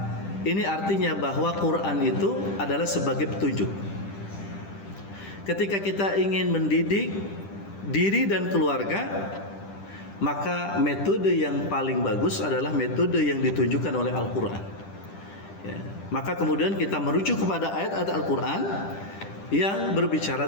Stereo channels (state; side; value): late; right; 10 ms